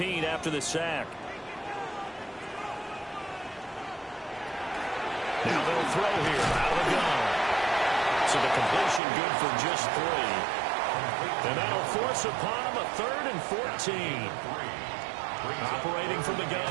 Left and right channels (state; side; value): drops out; left; at 9.0 s